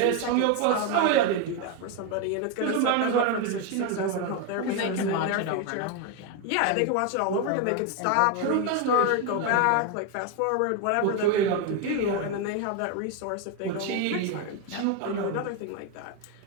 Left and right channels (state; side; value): different; both; correlation 0.02